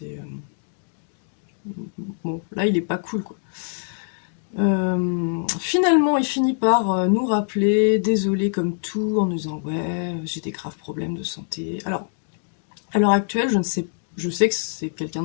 bon, là, il est pas cool, quoi. Finalement, il finit par nous rappeler, désolé comme tout, en nous disant, ouais, j'ai des graves problèmes de santé. Alors, à l'heure actuelle, je sais que c'est quelqu'un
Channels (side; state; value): right; silent; digital silence